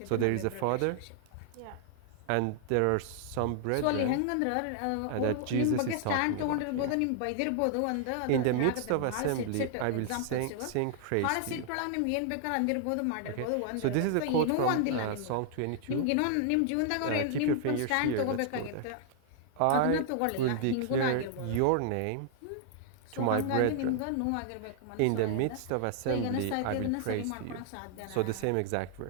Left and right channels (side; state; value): both; different; correlation 0.00